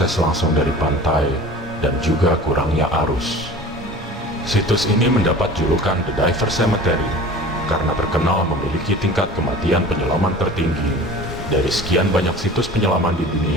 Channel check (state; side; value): normal; both; correlation 0.40